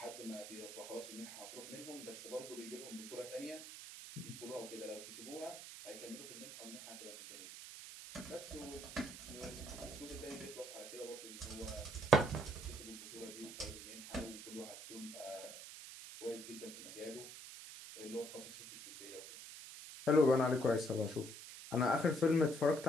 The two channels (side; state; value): right; noise; hiss, 11 dB below the sound